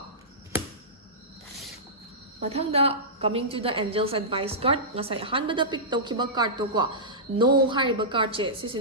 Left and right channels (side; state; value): both; normal; correlation -0.16